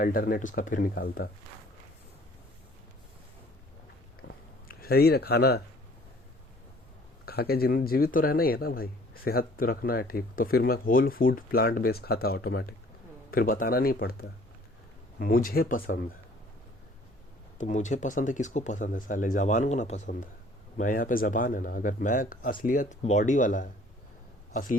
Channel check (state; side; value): normal; both; correlation 0.55